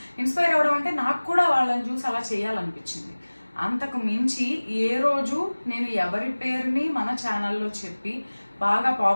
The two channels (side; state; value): both; inverted; correlation -1.00